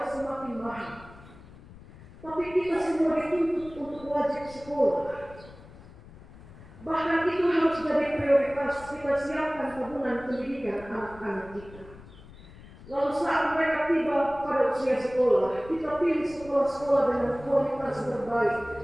semakin mahal. Tapi kita semua dituntut untuk wajib sekolah. Bahkan itu harus jadi prioritas kita siapkan tabungan pendidikan anak-anak kita. Lalu saat mereka tiba pada usia sekolah, kita pilih sekolah-sekolah dengan kualitas terbaik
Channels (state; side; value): noise; left; rumble, 19 dB below the sound